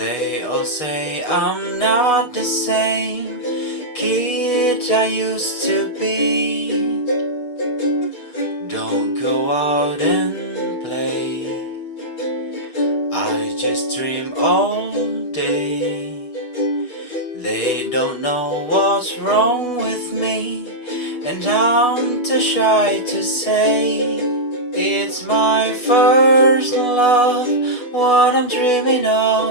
all say I'm not the same kid I used to be. Don't go out and play, I just dream all day. They don't know what's wrong with me, and I'm too shy to say. It's my first love, what I'm dreaming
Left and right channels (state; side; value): late; right; 6.5 ms